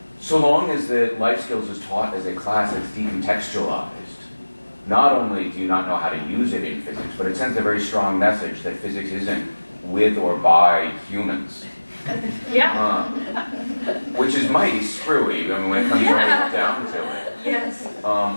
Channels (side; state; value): both; inverted; correlation -1.00